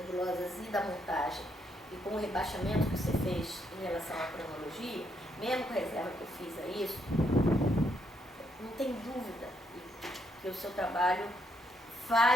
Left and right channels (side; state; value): both; normal; correlation 0.75